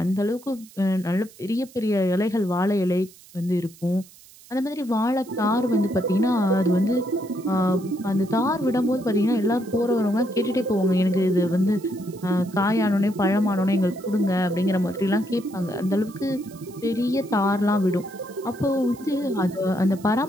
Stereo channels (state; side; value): noise; right; hiss, 23 dB below the sound